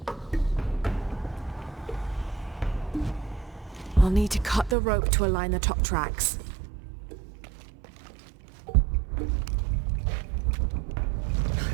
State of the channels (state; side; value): drops out; left; at 4.8 s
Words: I'll need to cut the rope to align the top tracks.